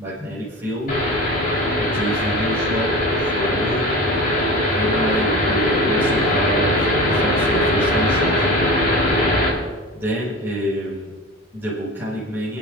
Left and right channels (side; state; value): both; normal; correlation 0.32